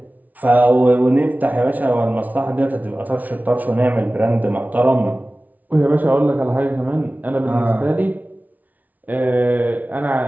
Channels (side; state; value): left; late; 0.076 ms